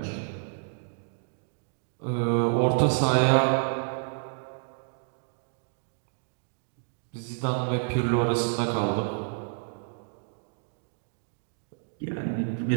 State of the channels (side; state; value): left; silent; digital silence